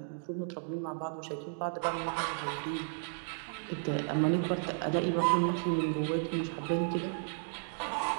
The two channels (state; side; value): silent; left; digital silence